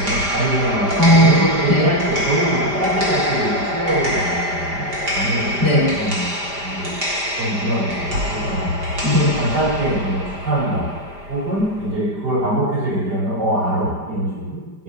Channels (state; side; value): late; left; 5.0 ms